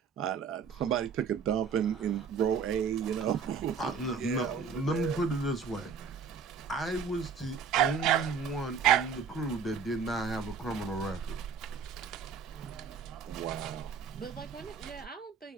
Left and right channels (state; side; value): quieter; left; 6.2 dB